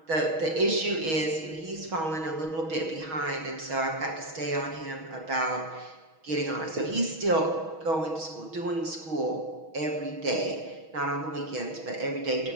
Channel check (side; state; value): left; late; 6.3 ms